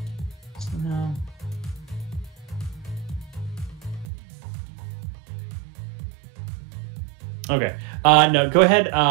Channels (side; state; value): left; drops out; at 4.1 s